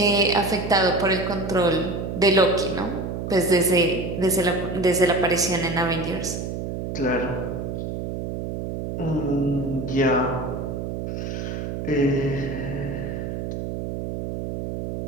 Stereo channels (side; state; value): right; noise; hum, 5 dB below the sound